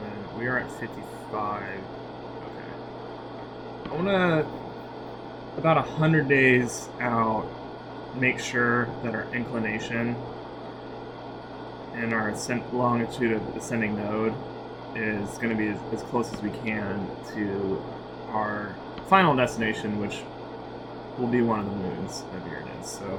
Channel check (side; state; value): both; identical; correlation 1.00